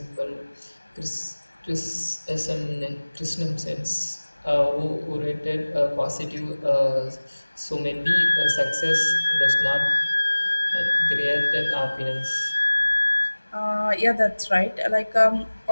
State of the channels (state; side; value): inverted; both; correlation -1.00